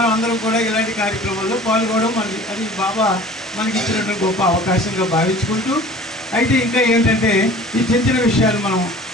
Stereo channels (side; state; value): both; normal; correlation 0.45